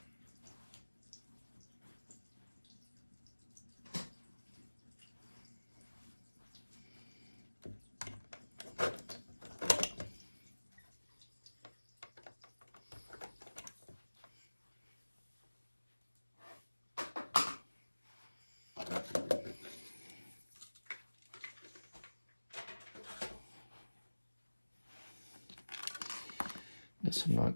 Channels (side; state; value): both; inverted; correlation -1.00